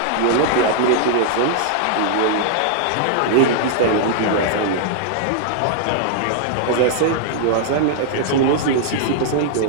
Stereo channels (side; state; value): both; different; correlation -0.01